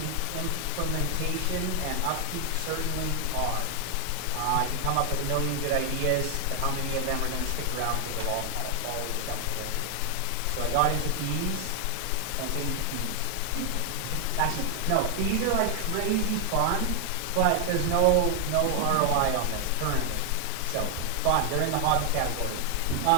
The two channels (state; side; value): different; both; correlation 0.00